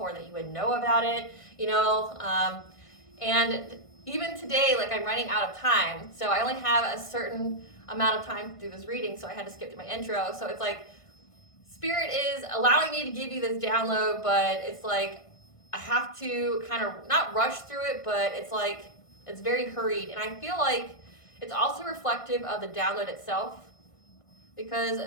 that you would know about it. And even today, I'm running out of time. So I only have a certain amount of time to do this reading. So I had to skip to my intro. So it's Spirit is allowing me to give you this download, but it's I have to kind of not rush through it, but it's very hurried. And I feel it's also reflective of the download itself, because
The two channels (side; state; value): right; late; 1.5 ms